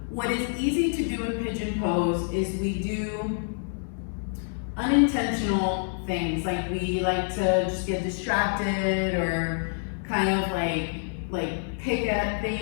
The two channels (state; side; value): silent; right; 60 dB below the other